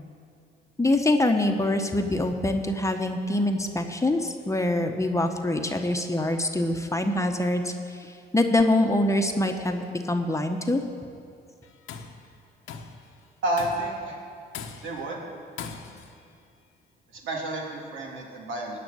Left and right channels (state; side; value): normal; both; correlation 0.70